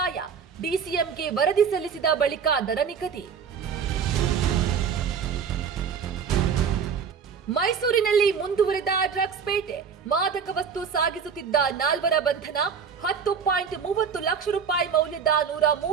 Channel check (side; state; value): left; quieter; 6.6 dB